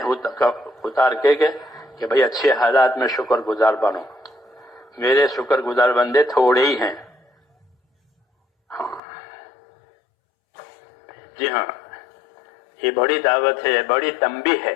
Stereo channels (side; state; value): right; drops out; at 9.0 s